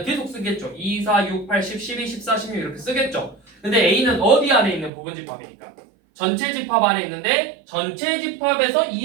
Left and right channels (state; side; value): drops out; left; at 4.9 s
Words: 계속 쓰겠죠. 2, 4, 6, 8, 10, 12, 14, 16 이렇게 쓰겠죠. 근데 a는 어디 안에 있는 부분 집합이니까? 전체 집합 안에 있는데 전체 집합에서